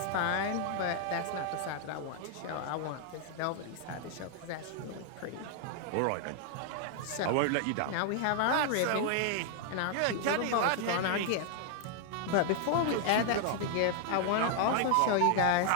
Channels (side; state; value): both; different; correlation 0.00